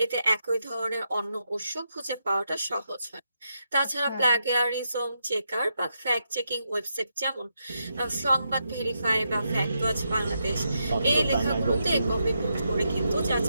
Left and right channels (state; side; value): inverted; both; correlation -0.83